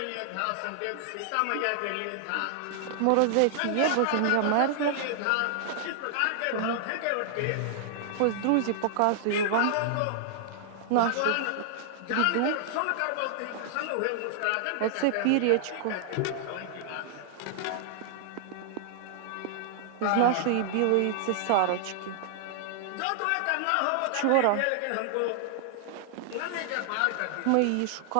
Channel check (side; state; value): both; different; correlation -0.01